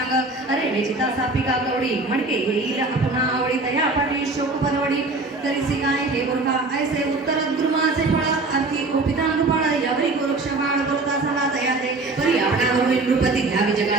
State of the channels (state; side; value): quieter; left; 3.3 dB